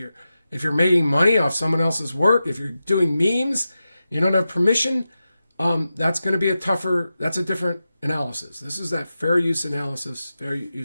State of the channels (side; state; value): both; inverted; correlation -0.92